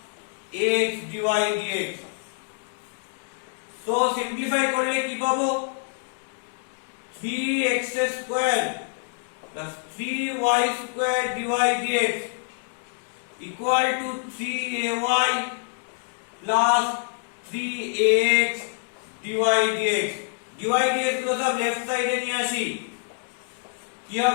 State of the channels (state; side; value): silent; right; 61 dB below the other